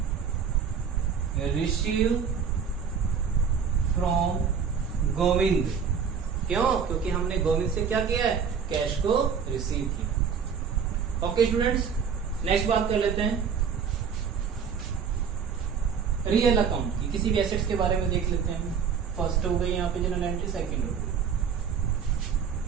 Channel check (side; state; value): left; quieter; 6.8 dB